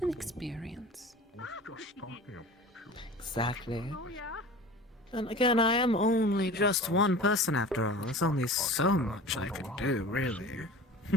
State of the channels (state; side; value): normal; both; correlation 0.38